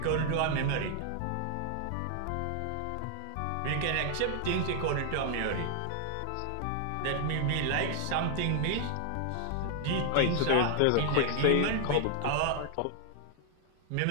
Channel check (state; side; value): different; both; correlation -0.01